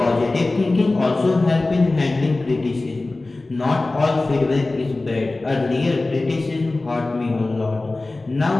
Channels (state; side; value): quieter; right; 3.1 dB